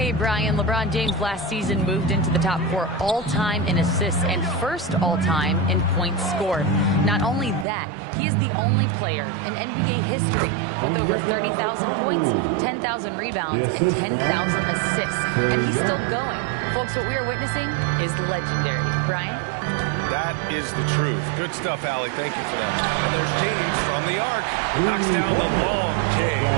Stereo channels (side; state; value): left; drops out; at 7.7 s